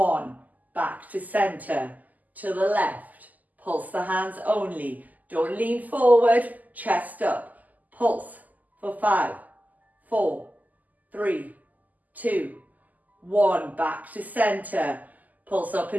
Back to center. To the left. Pulse the hands only. Don't lean forward. Chest up. Pulse for 5, 4, 3, 2, 1. Back to center. Pulse up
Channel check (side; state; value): left; late; 0.080 ms